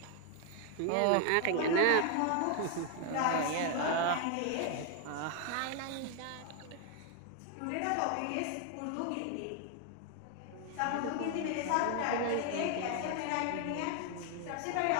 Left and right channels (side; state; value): both; different; correlation 0.01